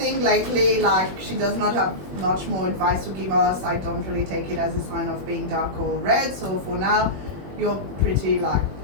lately, like, she does not have much more advice to give us. I don't really take it as a sign of being dark or red. So for now, you're pretty like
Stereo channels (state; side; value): late; left; 21 ms